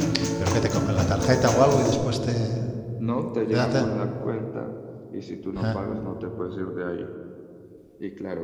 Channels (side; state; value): both; identical; correlation 1.00